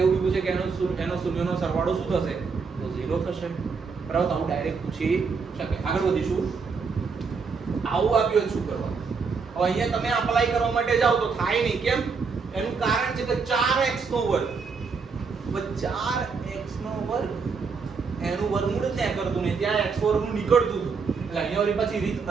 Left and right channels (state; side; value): quieter; left; 5.2 dB